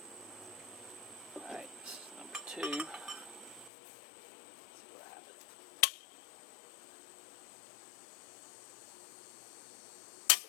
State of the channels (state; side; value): drops out; right; at 3.7 s